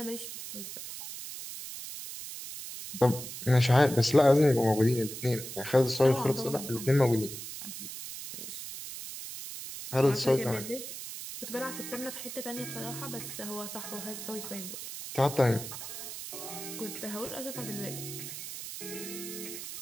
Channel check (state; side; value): noise; right; hiss, 9 dB below the sound